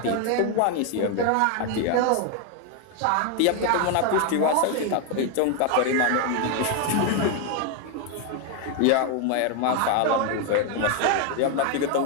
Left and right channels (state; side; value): different; both; correlation 0.01